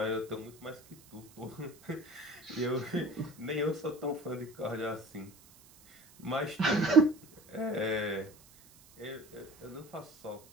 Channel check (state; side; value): noise; right; hiss, 24 dB below the sound